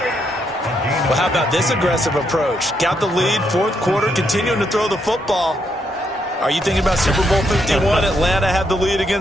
Well, how about this aggressive approach? Got the lead, 4th quarter, continuing to throw the football. Are you thinking about Super Bowl 51? Atlanta had the lead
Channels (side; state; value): both; normal; correlation 0.77